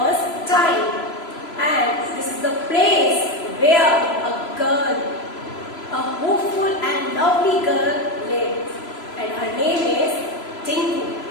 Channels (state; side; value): late; right; 3.0 ms